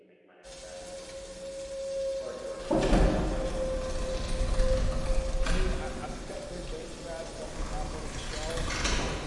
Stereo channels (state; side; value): identical; both; correlation 1.00